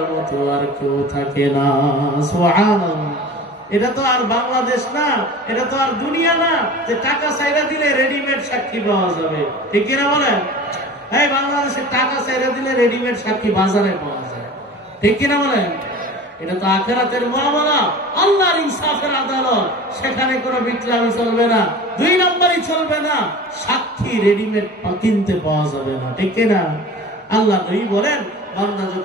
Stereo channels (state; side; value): normal; both; correlation 0.38